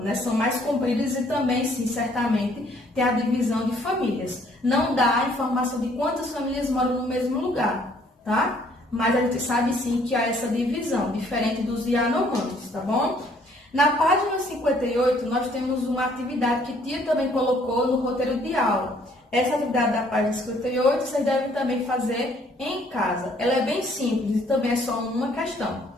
né? São mais compridas e também, sim, certamente, tem a divisão de famílias. Não dá a informação de quantas famílias moram no mesmo lugar, tá? Mas a gente sabe, sim, que há essa divisão, diferente dos Yanomamis, tá bom? Na página 58, nós temos uma atividade que Tia também colocou no roteiro de aula. Essa atividade da página 58 vocês devem também fazer em casa. Ela é bem simples e também é só uma questão.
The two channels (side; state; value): both; normal; correlation 0.62